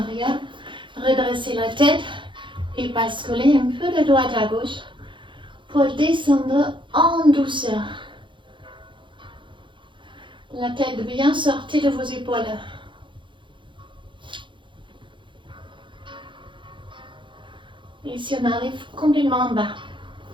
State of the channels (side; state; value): left; late; 0.23 ms